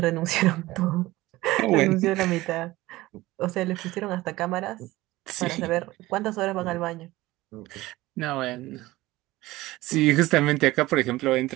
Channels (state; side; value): quieter; left; 18.3 dB